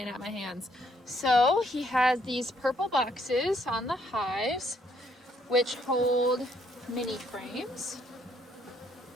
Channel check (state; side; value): normal; both; correlation 0.69